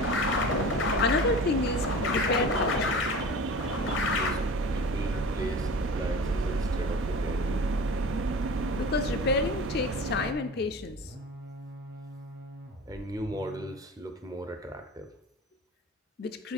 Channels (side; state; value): both; normal; correlation 0.36